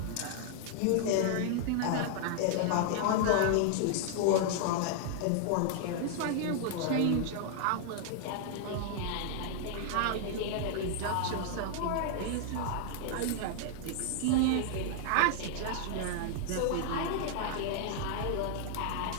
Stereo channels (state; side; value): different; both; correlation 0.00